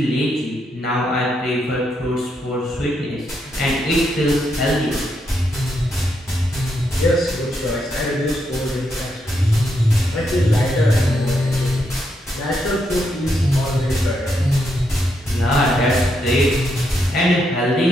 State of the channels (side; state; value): both; normal; correlation 0.79